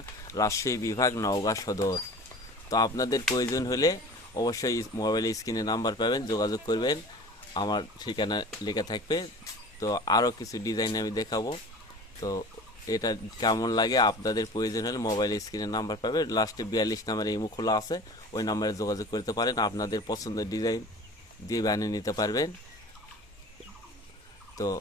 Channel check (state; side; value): normal; both; correlation 0.40